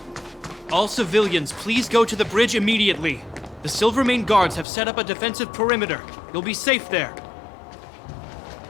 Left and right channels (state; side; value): drops out; right; at 4.7 s